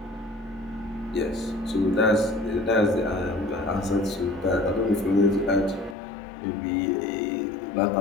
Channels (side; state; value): right; drops out; at 6.0 s